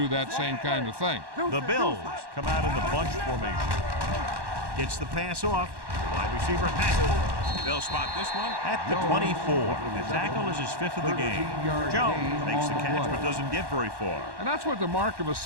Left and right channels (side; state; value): left; late; 1.1 ms